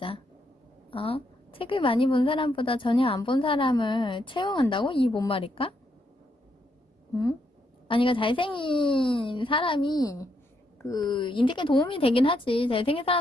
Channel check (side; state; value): both; normal; correlation 0.77